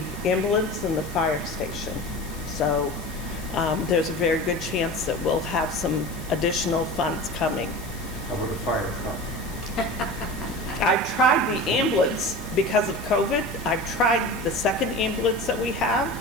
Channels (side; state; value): left; noise; hiss, 17 dB below the sound